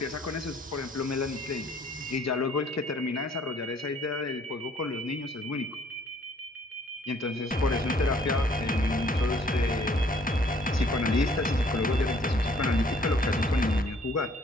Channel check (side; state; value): both; normal; correlation 0.60